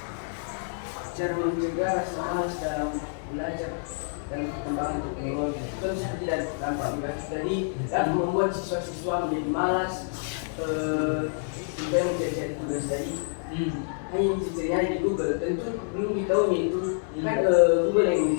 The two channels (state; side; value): silent; right; digital silence